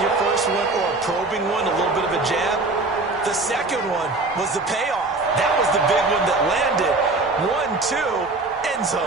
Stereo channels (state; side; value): quieter; left; 3.3 dB